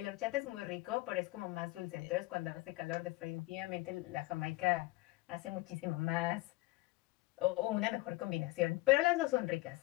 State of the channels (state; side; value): quieter; right; 20.6 dB